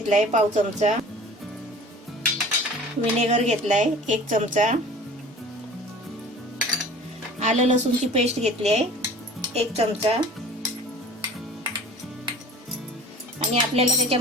पाव चमचा, विनेगर घेतलाय 1 चमचा, आलं लसूणची पेस्ट घेतली आहे 1 चमचा, आणि आपल्याला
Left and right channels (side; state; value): both; normal; correlation 0.44